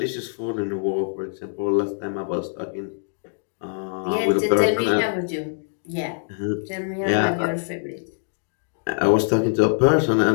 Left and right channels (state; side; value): silent; right; digital silence